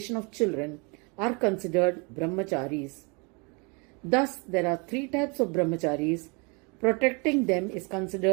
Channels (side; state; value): left; quieter; 31.5 dB